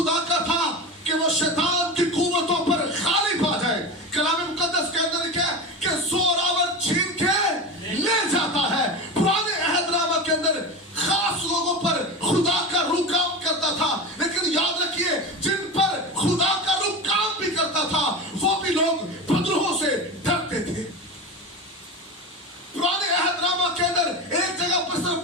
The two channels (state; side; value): normal; both; correlation 0.25